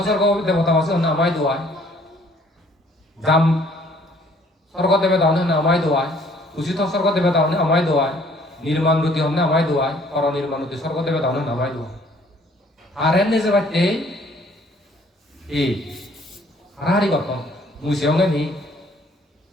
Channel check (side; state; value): both; normal; correlation 0.59